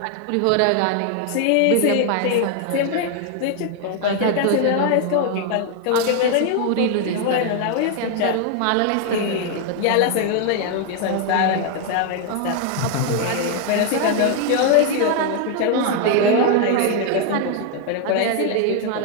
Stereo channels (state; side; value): different; both; correlation 0.00